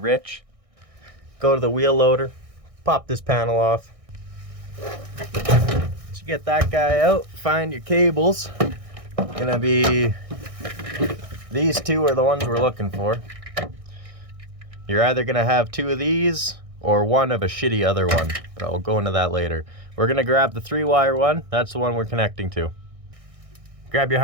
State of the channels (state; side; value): late; left; 1.6 ms